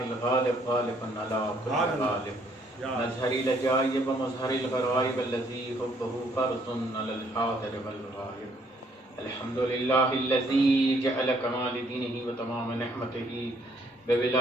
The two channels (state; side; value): normal; both; correlation 0.66